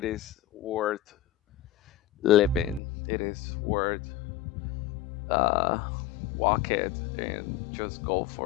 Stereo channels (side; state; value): right; drops out; at 2.8 s